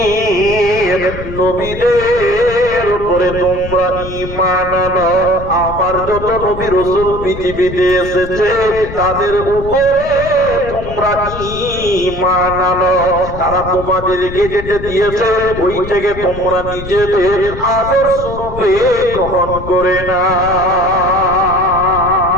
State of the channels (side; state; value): left; noise; rumble, 10 dB below the sound